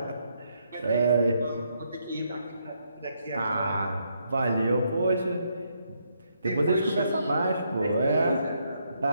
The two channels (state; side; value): inverted; both; correlation -0.76